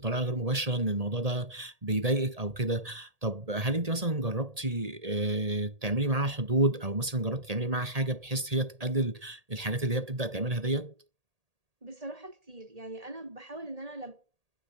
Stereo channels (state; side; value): late; left; 1.8 ms